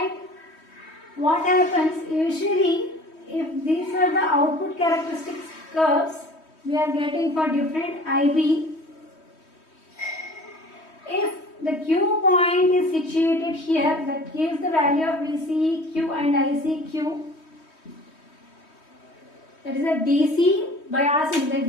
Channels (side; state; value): right; late; 3.2 ms